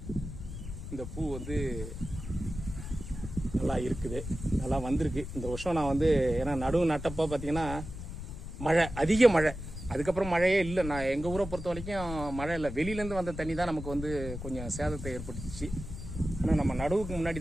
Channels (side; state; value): left; noise; rumble, 9 dB below the sound